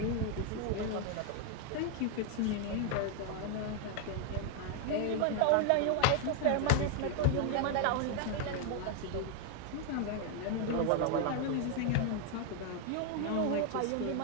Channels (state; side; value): different; both; correlation 0.00